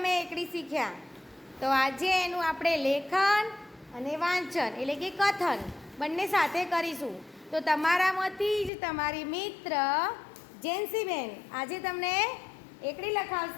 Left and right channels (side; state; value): right; drops out; at 8.7 s